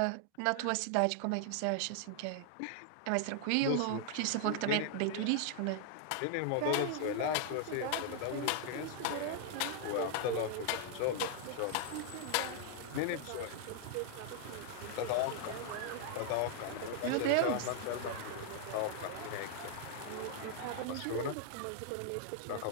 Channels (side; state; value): both; different; correlation 0.00